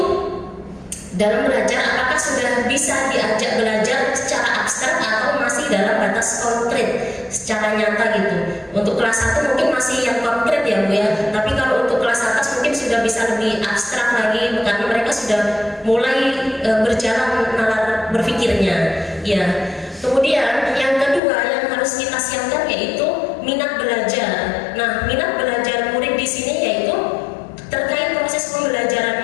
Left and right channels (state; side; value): drops out; right; at 21.2 s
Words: dalam belajar apakah sudah bisa diajak belajar secara abstrak atau masih dalam batas konkret secara nyata gitu. Untuk kelas 1 mungkin masih yang konkret ya Bu ya, tapi kalau untuk kelas atas mungkin sudah bisa lebih abstrak lagi karena mereka sudah mulai berjalan nalar berpikirnya ya. Kemudian yang kedua yang harus kita siapkan yaitu minat belajar. Nah, minat belajar murid di sini yaitu terkait proses